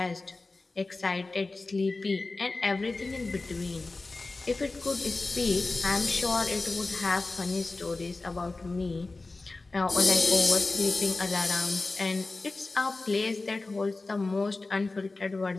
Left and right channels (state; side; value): quieter; right; 3.4 dB